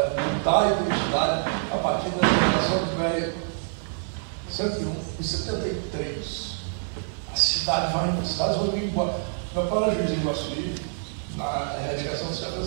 mudar a identidade a partir da geração velha. 101 e 73. As cidades vão embora. Meu pai era juiz em Iguaçuí, na erradicação dos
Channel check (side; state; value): left; silent; digital silence